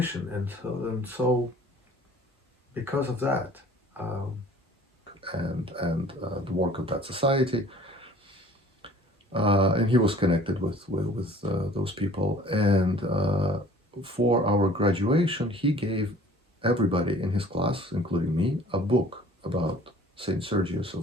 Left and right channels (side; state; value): both; normal; correlation 0.51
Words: and so because of that, and the work of that society, and he was connected with those people, and for our graduation, he gave everybody in his class, including me, a book about Saint Sergius